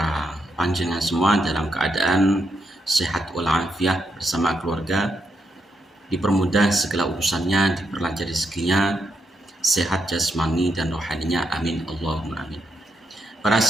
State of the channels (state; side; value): normal; both; correlation 0.81